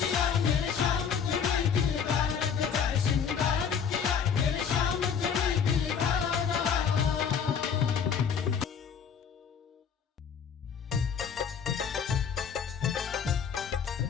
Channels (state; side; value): quieter; right; 7.1 dB